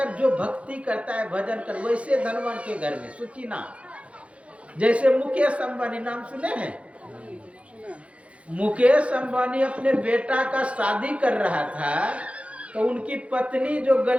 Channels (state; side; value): late; left; 0.062 ms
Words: जो भक्ति करता है, भजन कर, वैसे धनवान के घर में सुचिना। जैसे मुकेश अंबानी नाम सुने हैं? मुकेश अंबानी अपने बेटा का शादी कर रहा था, तो उनकी पत्नी जो